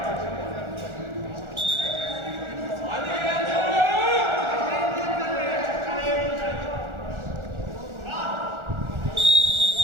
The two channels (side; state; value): left; late; 1.4 ms